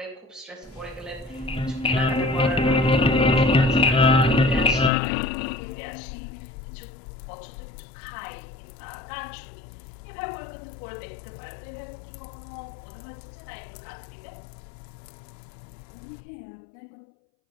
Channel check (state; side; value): drops out; right; at 4.9 s